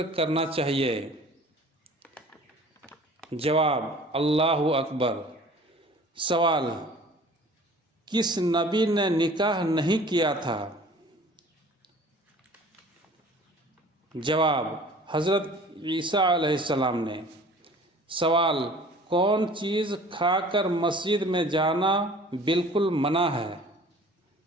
کرنا چاہیے؟ جواب: اللہ اکبر۔ سوال: کس نبی نے نکاح نہیں کیا تھا؟ جواب: حضرت عیسیٰ علیہ السلام نے۔ سوال: کون چیز کھا کر مسجد میں جانا بالکل منع ہے؟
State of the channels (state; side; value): normal; both; correlation 0.47